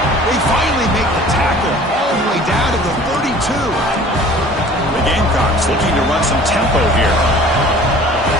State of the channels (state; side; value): normal; both; correlation 0.47